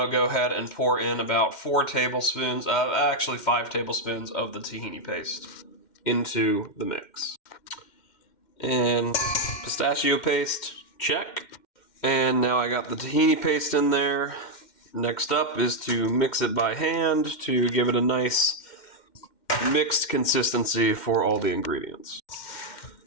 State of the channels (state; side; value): late; right; 2.1 ms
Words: to go ahead and pour in about 4 tablespoons, actually 5 tablespoons of the tahini paste into the mix. And pistachio paste, check. And now I got the tahini paste in there. Next up is to mix it by hand to give it a nice mixed consistency for all the ingredients.